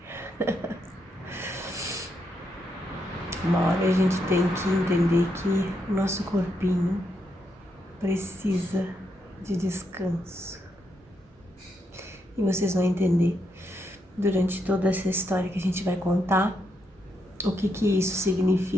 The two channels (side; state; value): both; normal; correlation 0.80